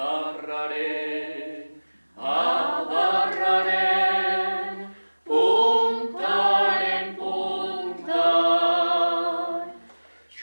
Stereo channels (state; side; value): inverted; both; correlation -1.00